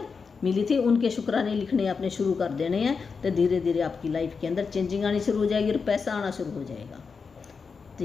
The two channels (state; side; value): quieter; right; 5.3 dB